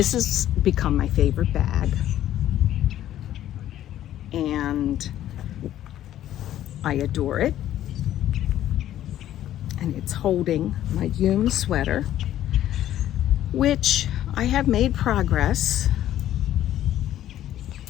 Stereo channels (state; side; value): quieter; right; 12.4 dB